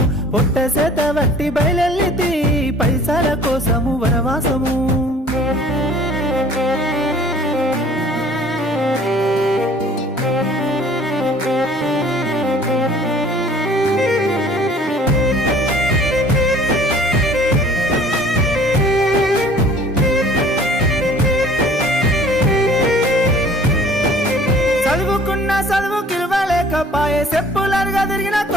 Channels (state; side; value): normal; both; correlation 0.52